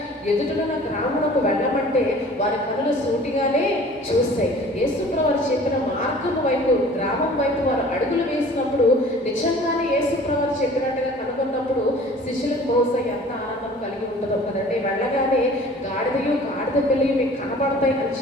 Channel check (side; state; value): both; normal; correlation 0.47